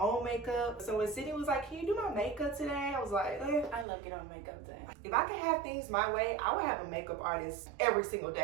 makeup. So when Sydney was like, can you do my makeup today? I was like, I love getting on makeup today. If I could have things my way, I would have a makeup artist every single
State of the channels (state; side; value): drops out; left; at 3.9 s